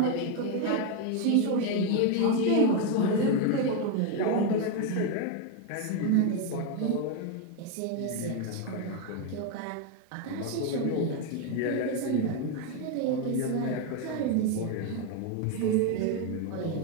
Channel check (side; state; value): both; different; correlation 0.02